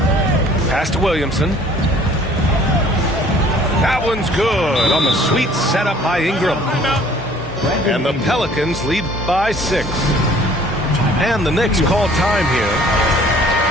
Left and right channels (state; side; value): normal; both; correlation 0.54